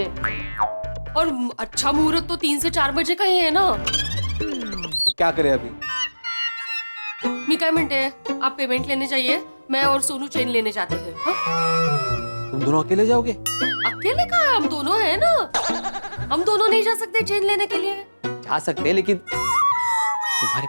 और अच्छा मुहूर्त तो 3 से 4 बजे का ही है ना। क्या करें अभी? मी क्या मिनट है, आप पेमेंट लेने जाइए, मैं और सोनू चेन लेने जाते हैं। हाँ? तुम दोनों अकेले जाओगे? अकेले कहाँ है, हम दोनों हैं ना। हम दोनों नहीं जा सकते चेन लेने के लिए? जा सकते हैं, लेकिन तुम्हारे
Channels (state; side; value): inverted; both; correlation -1.00